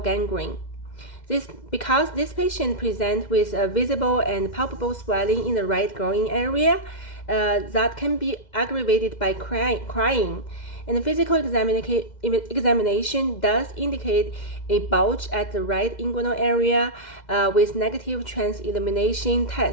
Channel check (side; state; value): right; late; 2.0 ms